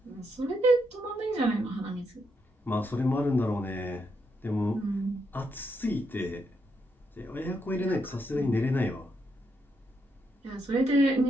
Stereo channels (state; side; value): normal; both; correlation 0.80